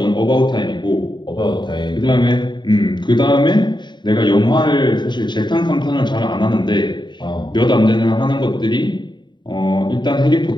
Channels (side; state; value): right; late; 0.22 ms